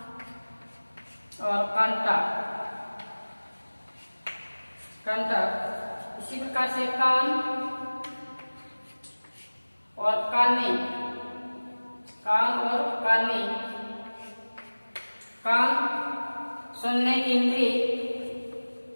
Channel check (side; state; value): both; inverted; correlation -1.00